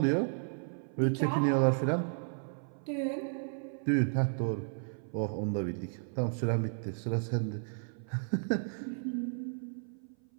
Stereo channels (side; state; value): left; silent; 55 dB below the other